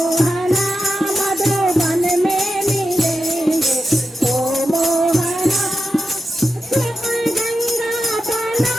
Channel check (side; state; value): both; normal; correlation 0.90